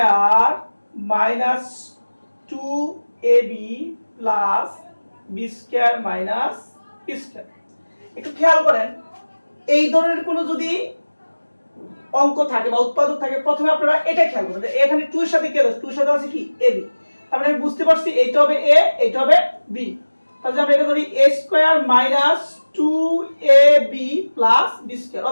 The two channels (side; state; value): both; inverted; correlation -1.00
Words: minus 2ab plus b square minus p square. একটু খেয়াল করেন, এই ধরনের কোনো যদি অঙ্ক থাকে বা উৎপাদক থাকে, প্রথমে আপনারা এটা খেয়াল করবেন যে এখানে 2 এর সাথে কি আছে? 2 এর সাথে আছে কি? ab। তার মানে আমি বুঝতে পারছি এইটা হবে a, এইটা হবে b। তাহলে আমরা এটা ধরি a square minus 2ab plus b square,